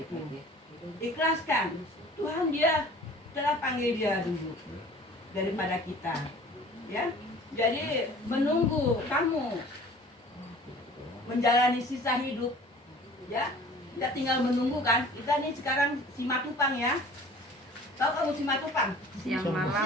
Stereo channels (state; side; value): normal; both; correlation 0.47